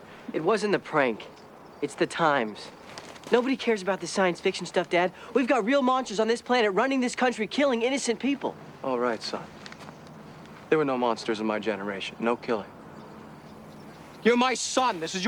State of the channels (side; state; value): both; identical; correlation 1.00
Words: It wasn't the prank. It's the times. Nobody cares about this science fiction stuff, Dad. We've got real monsters on this planet running this country, killing innocent people. All right, son. There were no monsters in my generation. No killing. You're my son. This is